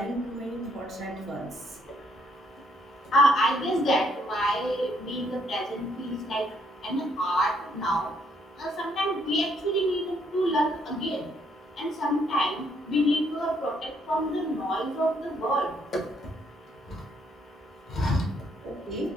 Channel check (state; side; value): normal; both; correlation 0.70